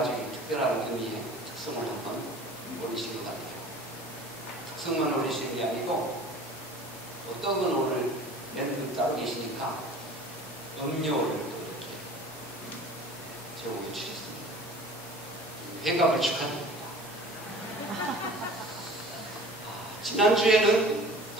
특별한 의미의 특성을 한번 올리신 것 같아요. 특성만 올리시는 게 아니고 어떤 분 오늘 멘트 따로 계시니까 음료를 또 이렇게 제공해 주셨습니다. 회갑을 축하드립니다. 지난주에는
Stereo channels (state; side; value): normal; both; correlation 0.43